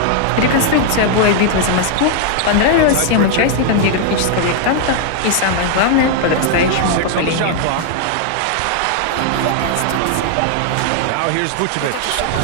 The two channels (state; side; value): different; both; correlation 0.00